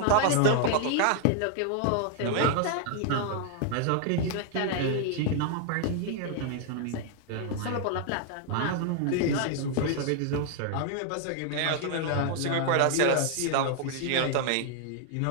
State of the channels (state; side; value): different; both; correlation 0.00